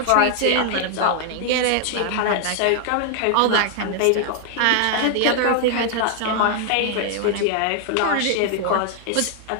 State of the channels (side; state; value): both; different; correlation 0.00